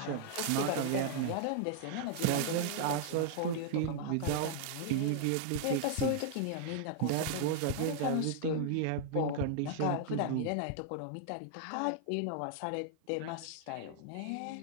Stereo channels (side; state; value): both; different; correlation 0.00